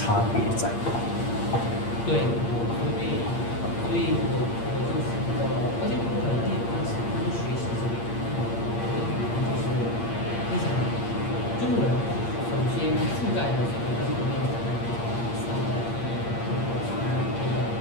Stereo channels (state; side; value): late; right; 8.7 ms